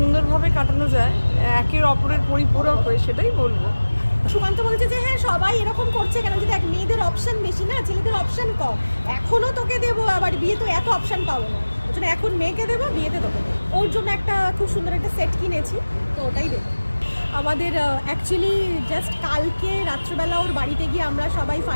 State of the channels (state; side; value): inverted; both; correlation -1.00